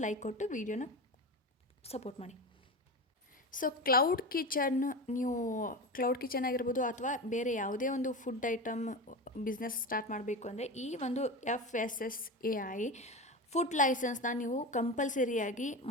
ಲೈಕ್ ಕೊಟ್ಟು ವಿಡಿಯೋನ ಸಪೋರ್ಟ್ ಮಾಡಿ. ಸೊ ಕ್ಲೌಡ್ ಕಿಚನ್, ನೀವು ಕ್ಲೌಡ್ ಕಿಚನ್ ಆಗಿರ್ಬೋದು ಅಥವಾ ಬೇರೆ ಯಾವುದೇ ಒಂದು ಫುಡ್ ಐಟಮ್ ಬಿಸ್ನೆಸ್ ಸ್ಟಾರ್ಟ್ ಮಾಡಬೇಕು ಅಂದರೆ ಈ ಒಂದು FSSAI ಫುಡ್ ಲೈಸೆನ್ಸ್ನ ನೀವು ಕಂಪಲ್ಸರಿಯಾಗಿ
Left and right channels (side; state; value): both; normal; correlation 0.24